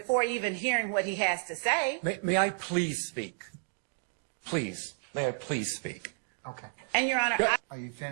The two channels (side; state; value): left; silent; digital silence